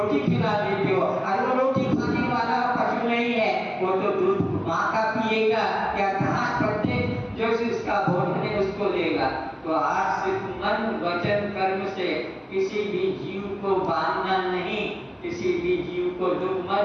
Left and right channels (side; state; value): both; identical; correlation 1.00